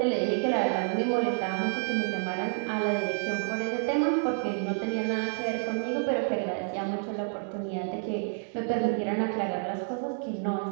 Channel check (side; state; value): left; silent; 59 dB below the other